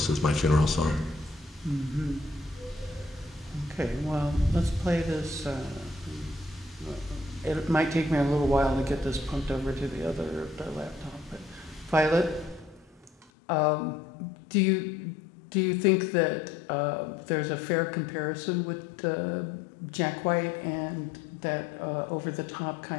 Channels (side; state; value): right; drops out; at 13.3 s